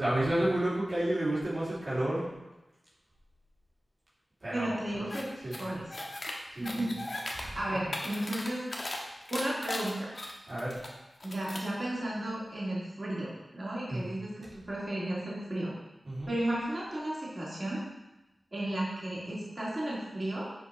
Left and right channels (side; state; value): both; normal; correlation 0.96